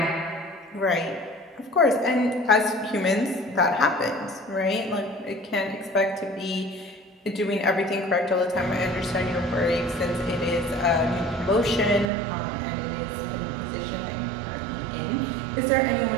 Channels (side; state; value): left; drops out; at 12.1 s